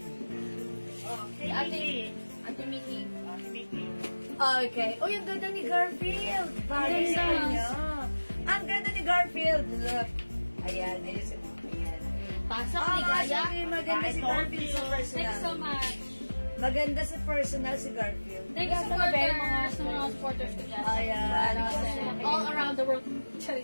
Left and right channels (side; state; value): both; inverted; correlation -1.00